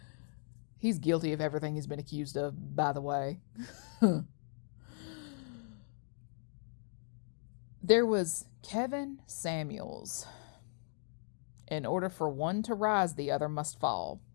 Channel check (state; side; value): silent; right; 53 dB below the other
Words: he's guilty of everything he's been accused of, by the way. There was Kevin Samuels. In order for one to rise, the other must fall.